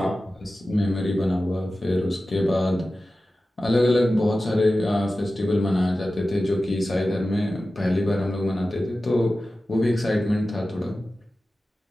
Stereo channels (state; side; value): normal; both; correlation 0.95